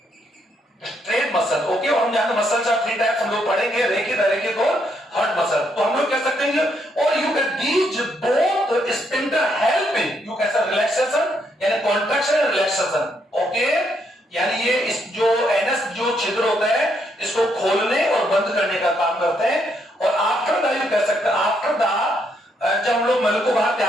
muscle. Okay, और हम जानते हैं मसल्स आर थ्री टाइप्स, हम लोग पढ़ेंगे, रेखित, अरेखित और हर्ट मसल। तो हम लोग कह सकते हैं और you can these both spindle help in you can say relaxation यानी कॉन्ट्रैक्शन एंड रिलैक्सेशन। ओके, यानी ये इस जो एनस जो छिद्र होता है इसको खोलने और बंद करने का काम करते हैं। और आफ्टर द यू कह सकते हैं आफ्टर द जब हम लोग मल को बाहर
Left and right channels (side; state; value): both; normal; correlation 0.75